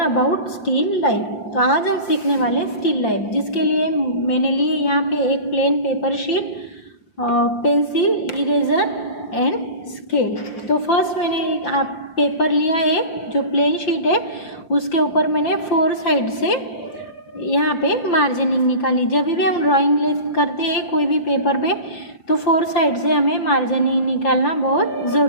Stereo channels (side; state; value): right; late; 5.3 ms